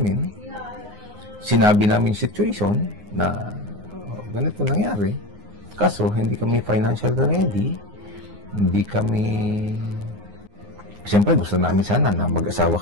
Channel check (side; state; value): left; late; 9.7 ms